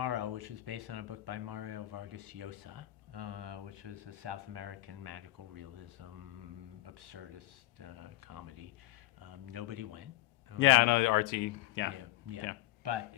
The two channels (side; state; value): right; quieter; 16.5 dB